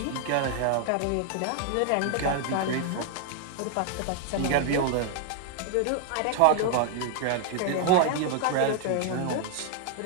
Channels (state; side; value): different; both; correlation 0.00